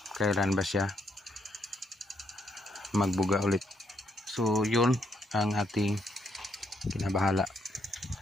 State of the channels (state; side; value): normal; both; correlation 0.75